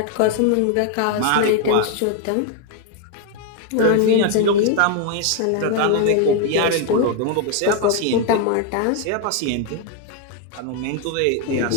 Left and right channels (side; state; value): both; different; correlation 0.01